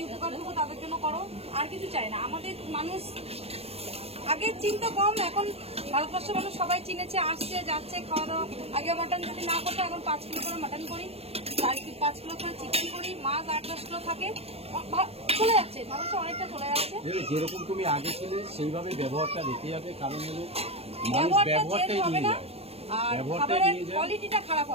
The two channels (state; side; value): late; left; 0.29 ms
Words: উপকারটুকু তাদের জন্য করো, আর কিছু চাই না। আমাদের মানুষ আগের চিন্তা কম, এখন ভারতবর্ষের মানুষ সবাই চিনেছে, আসছে যাচ্ছে খাওয়া দাওয়া। আগে মাটন যদি না করতো, এখন 5 কিলো করে মাটন করি, 5 কিলো করে চিকেন করি, মাছ 8-10 কিলো থাকে, চলে যাচ্ছে, মানুষ অনেকটা চলে যাচ্ছে। যেরকম তুমি আগে ছিলে সেইভাবে ব্যবহারটা রেখে যাবে, কারণ হলো ব্যবহারটা চেঞ্জ হবে না, আর খাবারের কোয়ালিটিটা খারাপ